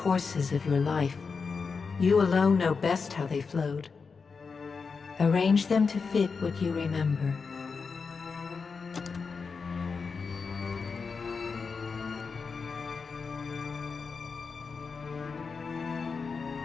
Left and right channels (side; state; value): right; quieter; 5.1 dB